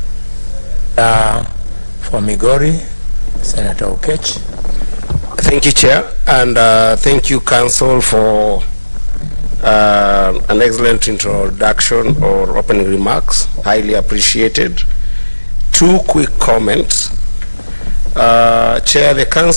For Migori, Senator Okech. Thank you, Chair, and thank you, Council, for an excellent introduction or opening remarks. Highly appreciated. Two quick comments. Chair, the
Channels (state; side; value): inverted; both; correlation -1.00